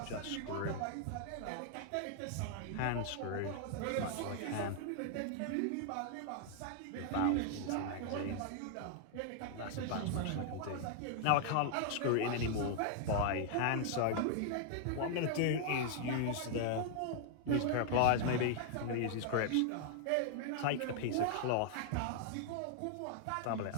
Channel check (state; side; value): different; both; correlation 0.00